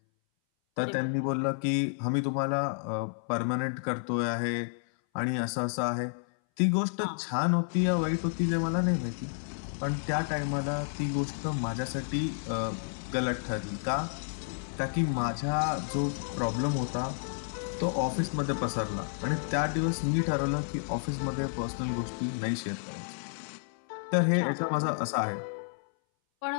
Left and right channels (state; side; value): silent; right; 57 dB below the other